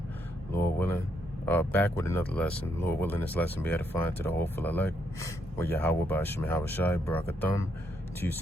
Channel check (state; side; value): normal; both; correlation 0.76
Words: Lord willing, back with another lesson. Lord willing, this lesson be edifying to the hopeful elect. With Yahweh Ba'ashem Yahweh Shai, Barakathum, to you